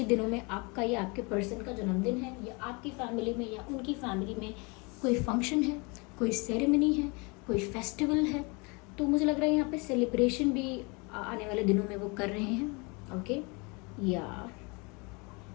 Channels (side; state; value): right; quieter; 29.5 dB